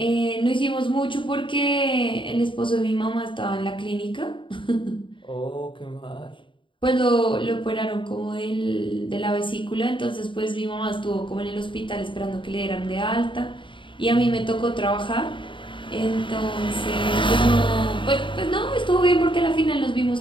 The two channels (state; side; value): late; right; 0.24 ms